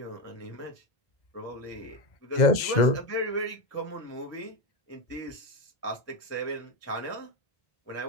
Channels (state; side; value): late; right; 2.0 ms